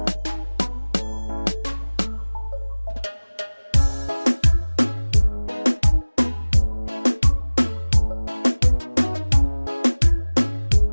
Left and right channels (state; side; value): inverted; both; correlation -1.00